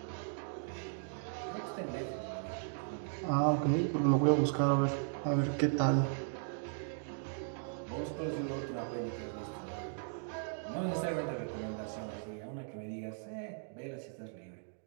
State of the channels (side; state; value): left; silent; digital silence